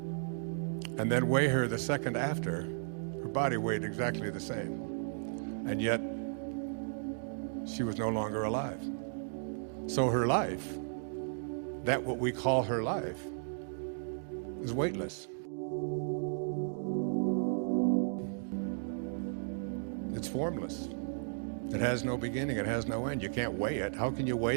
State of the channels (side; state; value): left; silent; digital silence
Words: and then weigh her the second after, her body weighed exactly the same. And yet, she was no longer alive. So her life, that what we call her life, is weightless. It's formless. It has no beginning, it has no end. You can't weigh it. How can you